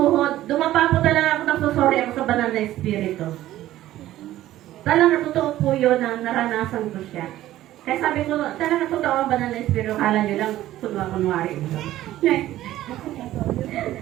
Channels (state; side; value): quieter; left; 14.3 dB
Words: Dumapa po talaga ako, nagsusori ako sa banal na Espiritu. Talagang totoo po yun na naranasan ko siya. Kaya sabi ko, talagang totoo ang banal na Espiritu. Kala niyo lang, kunwari.